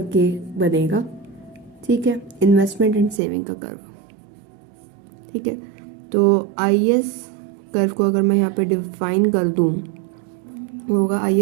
बनेगा। ठीक है, इन्वेस्टमेंट एंड सेविंग का कर्व। ठीक है, तो आईएस कर्व को अगर मैं यहाँ पे डिफाइन कर दूँ, होगा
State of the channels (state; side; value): drops out; left; at 3.2 s